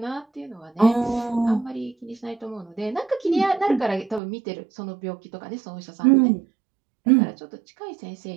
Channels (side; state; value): left; drops out; at 4.2 s